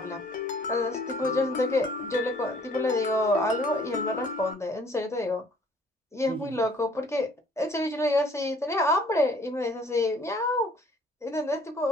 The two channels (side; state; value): both; normal; correlation 0.57